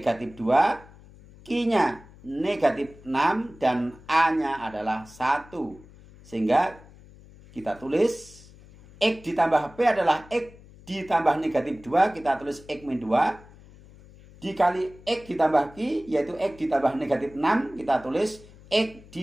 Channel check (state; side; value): noise; left; hum, 22 dB below the sound